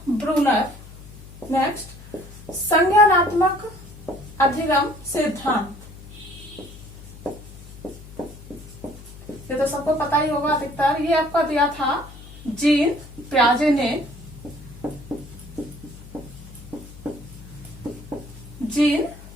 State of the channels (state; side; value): noise; left; hum, 17 dB below the sound